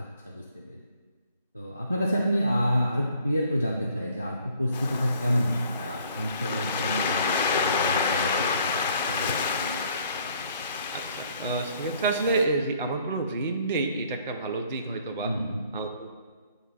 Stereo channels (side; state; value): both; inverted; correlation -0.61